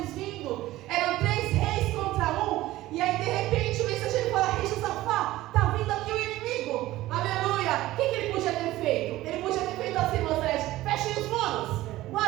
vindo, eram 3 reis contra um, e aí de repente o mensageiro fala, rei Josafá, está vindo aqui o inimigo, aleluia. O que ele podia ter feito? Ele podia ter feito assim, Moisés, fechem os muros,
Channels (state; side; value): quieter; left; 16.4 dB